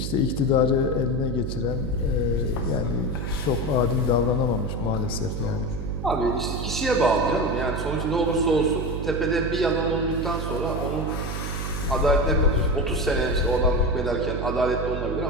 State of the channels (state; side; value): noise; right; hum, 4 dB below the sound